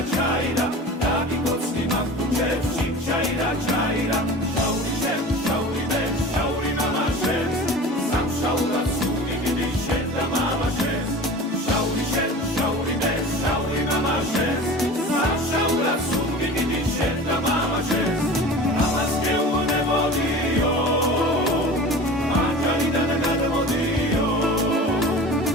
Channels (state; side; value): normal; both; correlation 0.37